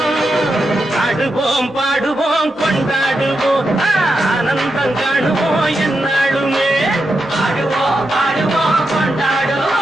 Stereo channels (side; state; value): both; normal; correlation 0.86